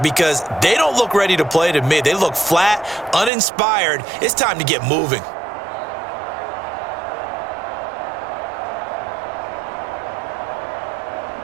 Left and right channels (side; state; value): left; drops out; at 3.3 s